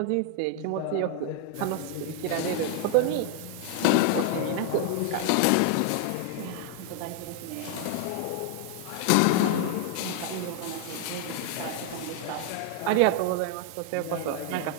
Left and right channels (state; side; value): different; both; correlation 0.00